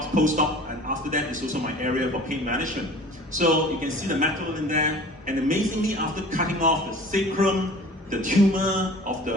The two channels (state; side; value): normal; both; correlation 0.44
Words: post-op, and after that is also my area for pain management. So you can see the metal in there, and amazingly, after cutting off the sacrum, the tumor of